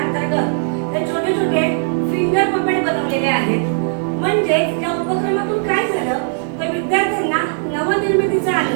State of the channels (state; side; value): silent; left; 63 dB below the other